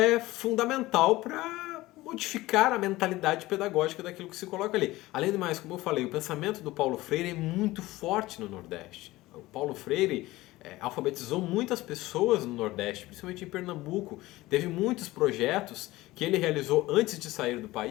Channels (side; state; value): right; quieter; 18.4 dB